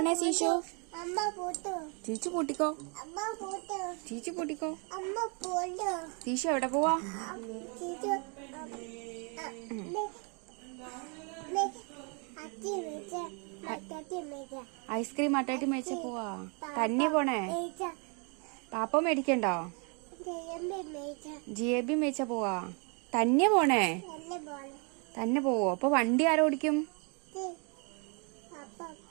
ശീശു? ചീച്ചു പൂട്ടിക്കോ. ചീച്ചു പൂട്ടിക്കോ. ശീശു എവിടെ പോവാ? ഐസ്ക്രീം അട്ടാട്ടി മേടിച്ച പോവാ. തന്നെ പോണേ? പാപ്പ മേടിക്കണ്ടോ? ജിലേബി മേടിച്ച പോവാ. തന്നെ പോണേ? തന്നെ പോവോ? അപ്പൊ വണ്ടി ആരോടിക്കും?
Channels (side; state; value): left; quieter; 35.4 dB